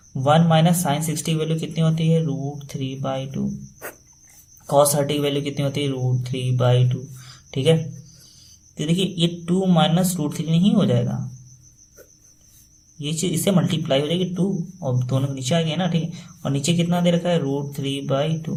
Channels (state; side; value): identical; both; correlation 1.00